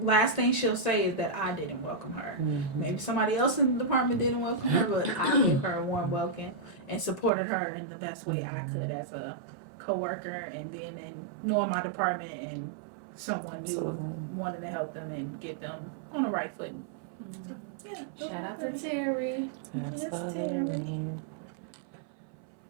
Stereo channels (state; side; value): drops out; left; at 7.3 s